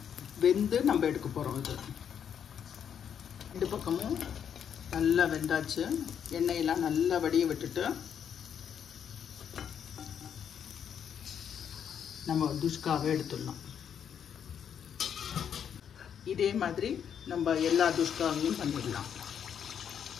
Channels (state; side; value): quieter; right; 8.3 dB